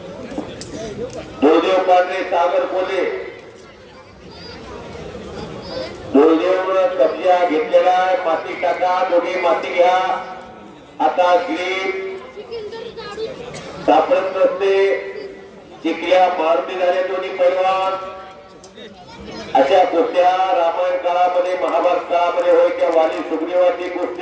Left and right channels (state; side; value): identical; both; correlation 1.00